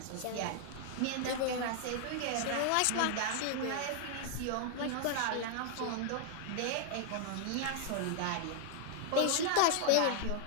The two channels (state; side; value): different; both; correlation 0.00